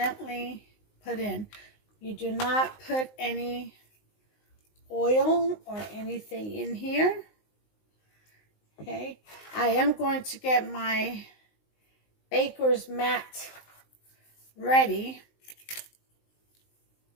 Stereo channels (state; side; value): late; right; 19 ms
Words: put in. You do not put any oil or anything in here. Okay. I am going to get my baker's mat ready.